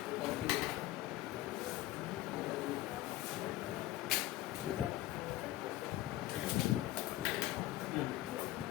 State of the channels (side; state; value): right; quieter; 15.9 dB